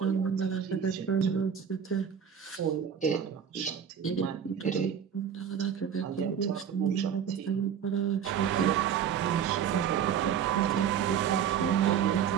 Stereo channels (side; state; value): left; quieter; 8.1 dB